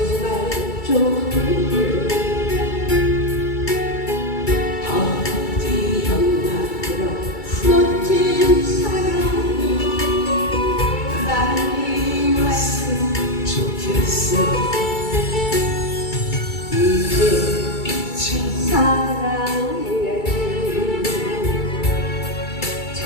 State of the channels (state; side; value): late; right; 2.3 ms